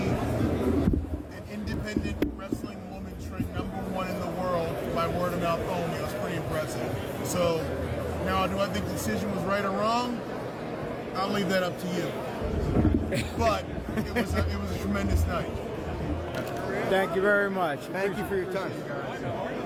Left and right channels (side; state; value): both; identical; correlation 1.00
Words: an independent wrestling woman trained #1 in the world by word of mouth only. It was pretty impressive. So now, do I think the decision was right or wrong? I'll leave that up to you. But it was a tremendous night. Thank you very much. Thank you for your time.